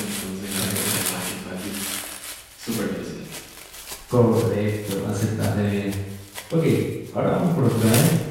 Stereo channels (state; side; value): identical; both; correlation 1.00